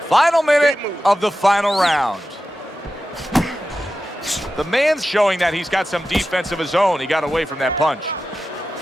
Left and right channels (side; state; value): both; normal; correlation 0.92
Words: Final minute of the final round. The man's showing that he's got some defense of his own. He got away from that punch.